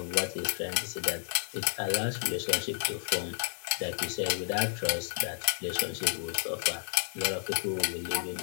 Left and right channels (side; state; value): right; silent; digital silence